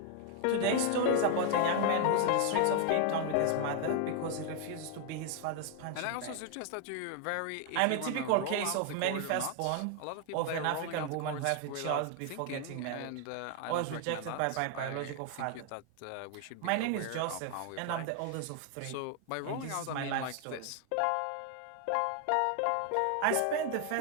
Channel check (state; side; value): different; both; correlation 0.00